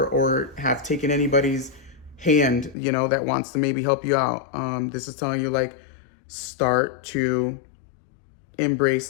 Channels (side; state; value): right; drops out; at 2.8 s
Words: have taken anybody's hand, that wants to maybe help you out. This is telling you, like, start to